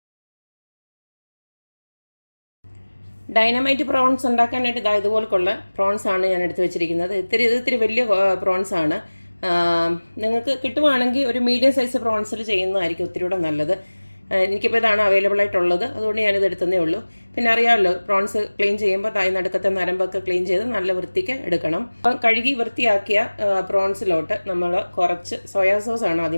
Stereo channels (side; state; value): both; inverted; correlation -1.00